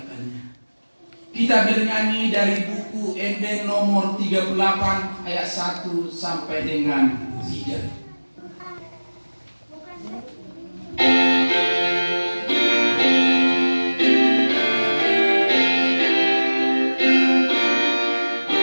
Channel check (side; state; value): both; inverted; correlation -1.00